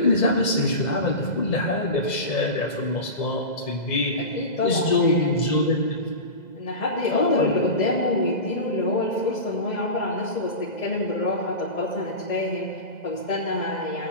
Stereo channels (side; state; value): right; late; 2.0 ms